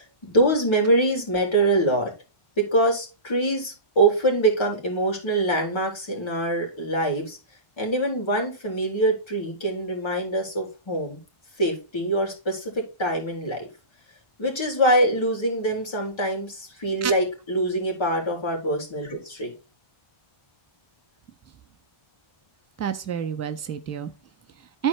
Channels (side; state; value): right; late; 1.3 ms